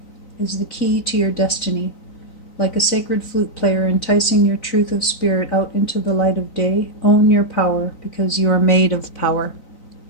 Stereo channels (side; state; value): right; late; 3.9 ms